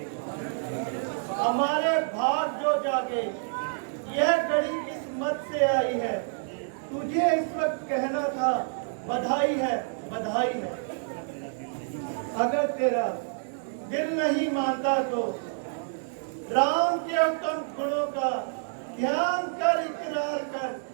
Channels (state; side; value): silent; left; 59 dB below the other